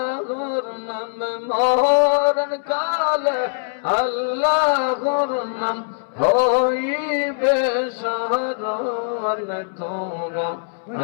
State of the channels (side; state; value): right; silent; 64 dB below the other